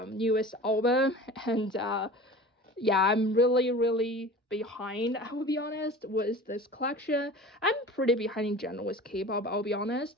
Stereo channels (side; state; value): both; normal; correlation 0.38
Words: newest album, and yeah, I'm really behind, I will be honest, with this collection. I'm pretty behind in general with K-pop, I'll be